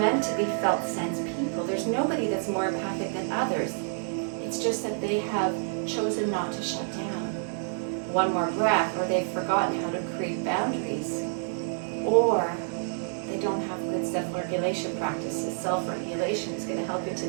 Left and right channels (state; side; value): silent; left; digital silence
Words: to be felt sense people. There's nobody that's more empathic than others. It's just that they have chosen not to shut down. 1 more breath, or they've forgotten how to create boundaries, or they don't have good self-regulation practices. Self-regulation is going to help you